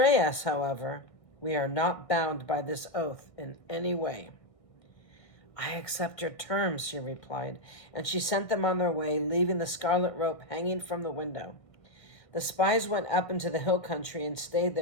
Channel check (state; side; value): late; right; 1.6 ms